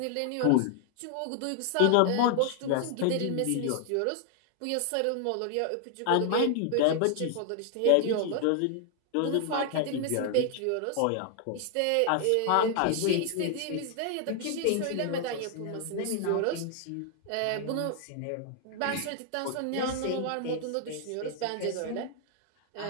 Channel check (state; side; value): different; both; correlation 0.00